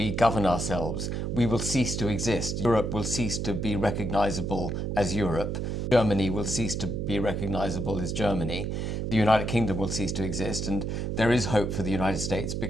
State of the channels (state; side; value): noise; right; hum, 2 dB below the sound